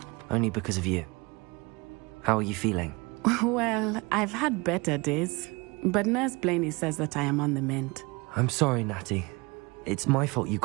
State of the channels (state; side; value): quieter; left; 25.9 dB